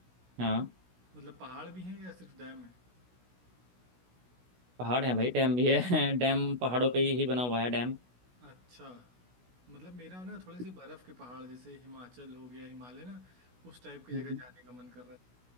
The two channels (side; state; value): left; late; 16 ms